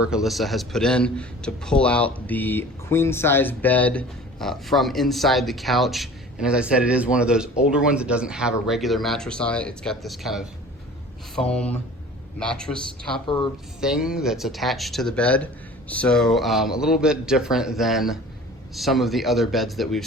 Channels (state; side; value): normal; both; correlation 0.43